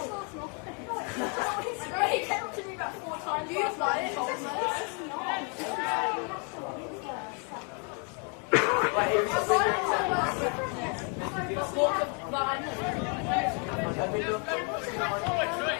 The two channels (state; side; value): quieter; right; 37.3 dB